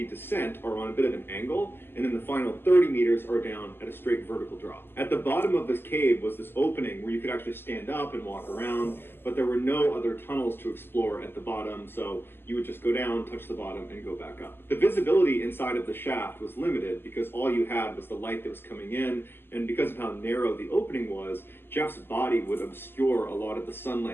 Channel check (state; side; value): late; right; 0.11 ms